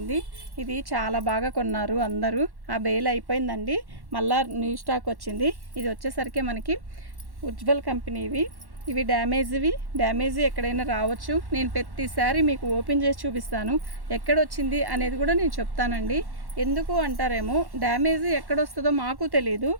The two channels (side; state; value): left; late; 1.1 ms